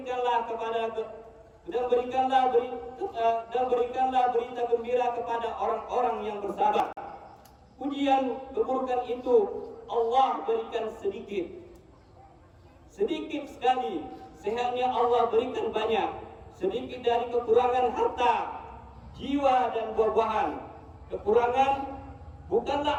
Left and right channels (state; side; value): identical; both; correlation 1.00